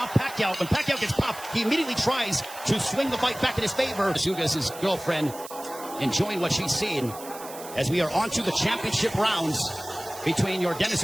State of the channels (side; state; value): right; noise; hiss, 15 dB below the sound